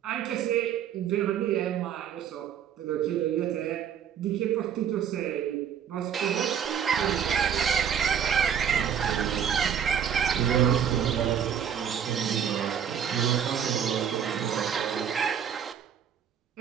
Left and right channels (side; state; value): left; quieter; 8.5 dB